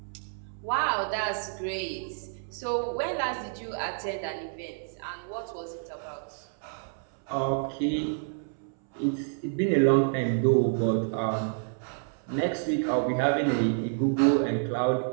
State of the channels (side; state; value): left; silent; 59 dB below the other